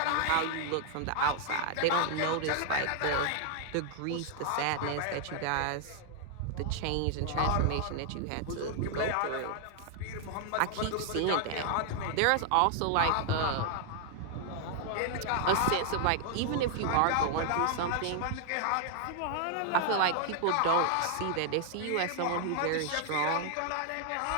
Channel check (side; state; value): both; different; correlation 0.00